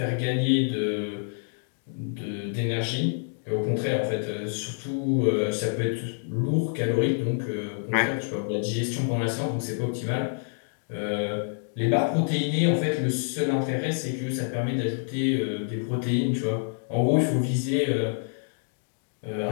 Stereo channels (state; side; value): silent; right; digital silence